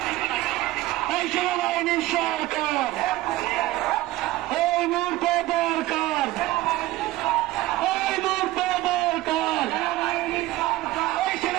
এই সেনাবাহিনীর সরকার। এই মুহূর্তে দরকার, এই মুহূর্তে দরকার এই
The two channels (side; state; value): left; quieter; 17.3 dB